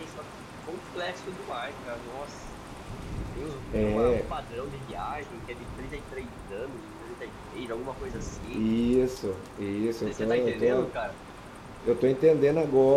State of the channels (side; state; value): both; identical; correlation 1.00